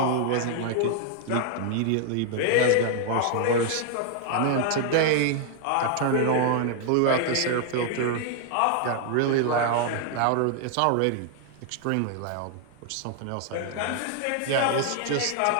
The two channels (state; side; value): different; both; correlation 0.00